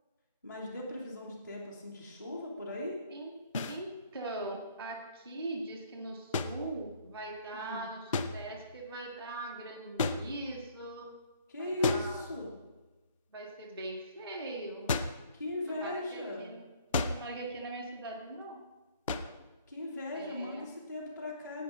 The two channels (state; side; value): inverted; both; correlation -0.59